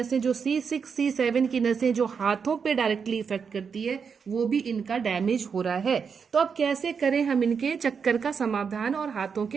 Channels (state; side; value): quieter; left; 6.2 dB